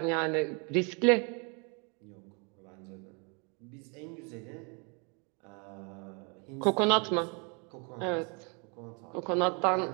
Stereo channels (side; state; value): left; quieter; 34.3 dB